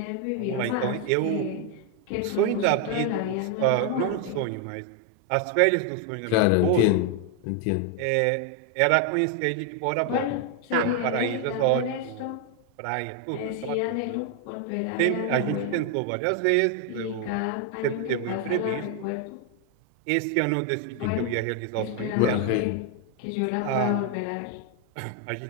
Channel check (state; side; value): different; both; correlation 0.00